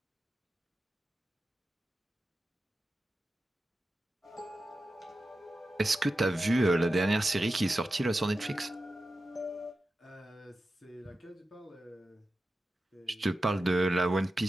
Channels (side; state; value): both; normal; correlation 0.92